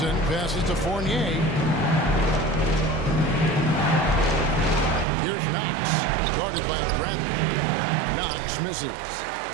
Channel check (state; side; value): drops out; left; at 5.1 s